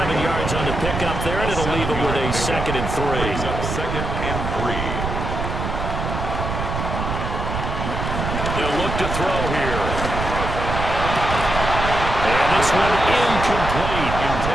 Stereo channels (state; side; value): noise; right; rumble, 4 dB below the sound